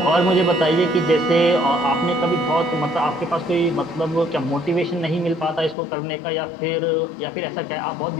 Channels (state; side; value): drops out; right; at 5.8 s